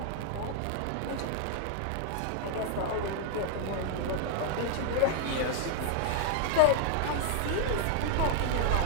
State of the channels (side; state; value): both; different; correlation 0.00